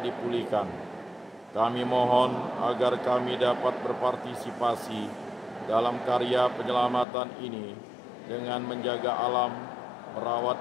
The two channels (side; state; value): right; drops out; at 7.1 s